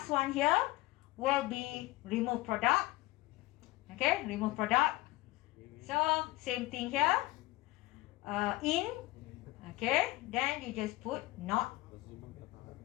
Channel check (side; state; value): right; quieter; 19.8 dB